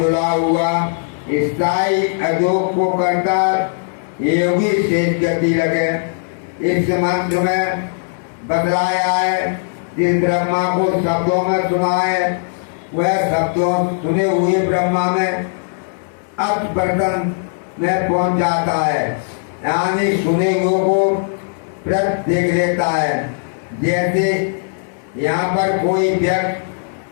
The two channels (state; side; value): silent; right; 63 dB below the other